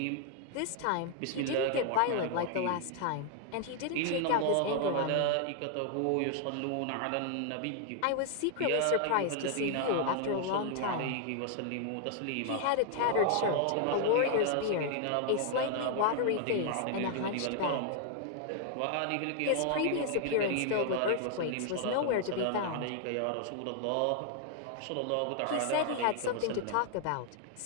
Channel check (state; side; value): different; both; correlation 0.00